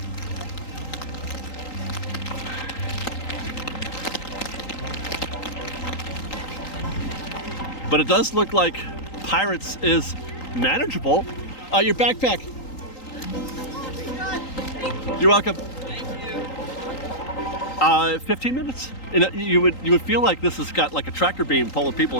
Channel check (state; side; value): late; right; 3.8 ms